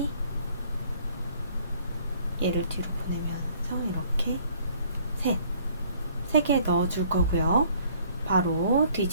얘를 뒤로 보내면서 이렇게 3개 넣어줄 거고요. 바로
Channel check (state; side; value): inverted; both; correlation -0.59